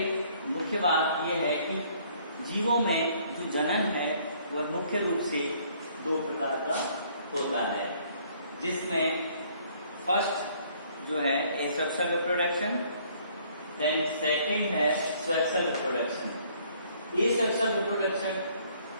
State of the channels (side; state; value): both; inverted; correlation -0.61